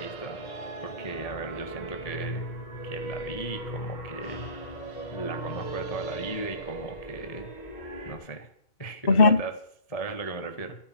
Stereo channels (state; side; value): late; right; 1.7 ms